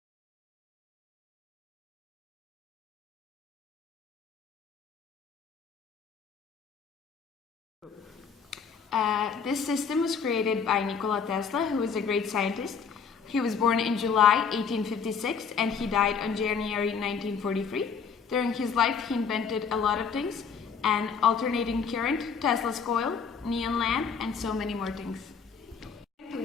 This system was created by Nikola Tesla, who was a great scientist. He was born in July 1856 and he died on January 1943. During his life, he invented a lot of things: an alternating current, Tesla's coil, neon lamp, and so many more things. To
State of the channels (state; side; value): quieter; right; 6.1 dB